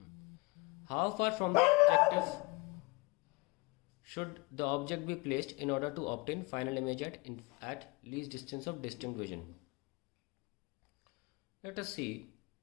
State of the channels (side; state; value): right; quieter; 25.6 dB